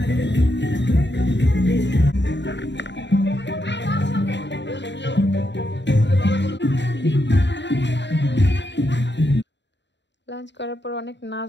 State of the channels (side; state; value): right; late; 0.52 ms